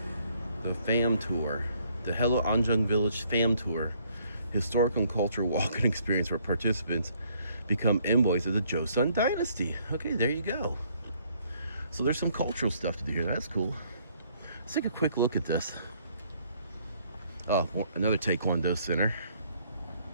the fam tour, the Hello Anjeong Village fam tour, historical and cultural walking experience where participants become envoys of the Joseon dynasty. Okay, there you go. So there's some cultural stuff to do here. That's cool. Let's take a quick look at this. Oh, another Taekwondo center.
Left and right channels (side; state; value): both; inverted; correlation -0.65